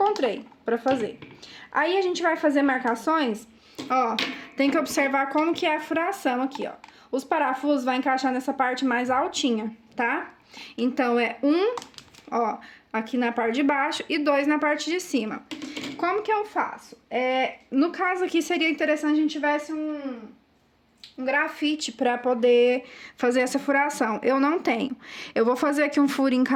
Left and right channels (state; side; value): identical; both; correlation 1.00